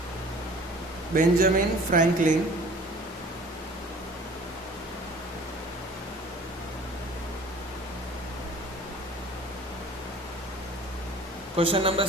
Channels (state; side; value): normal; both; correlation 0.47